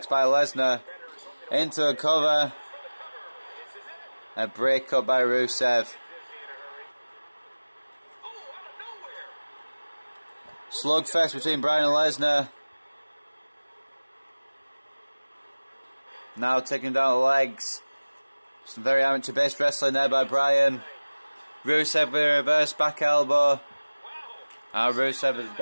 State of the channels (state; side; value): inverted; both; correlation -1.00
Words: by Lesnar. Into a cover. A break up by Rusev. Slugfest between Bryan and Lesnar. Now taking down the legs. Some very amateur-based wrestling there by Bryan. Rusev with a reverse back elbow. Now Rusev has